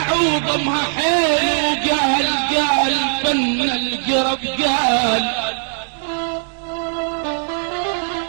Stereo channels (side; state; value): left; silent; digital silence